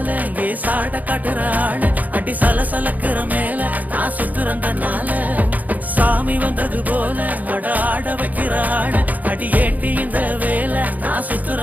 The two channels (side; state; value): left; late; 0.079 ms